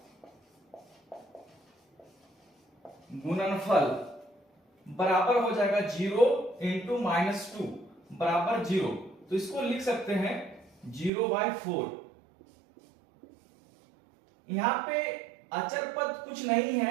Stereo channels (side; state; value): left; drops out; at 11.1 s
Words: गुणनफल बराबर हो जाएगा 0 × -2 बराबर 0। तो इसको लिख सकते हैं 0/4। यहां पे अचर पद कुछ नहीं